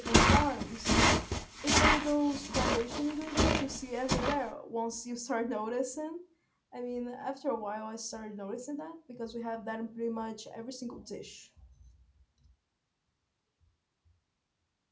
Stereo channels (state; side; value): identical; both; correlation 1.00